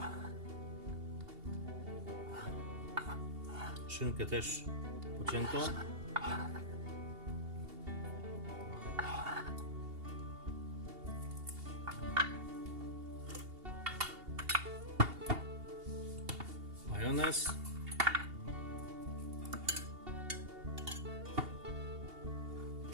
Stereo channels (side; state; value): left; late; 2.8 ms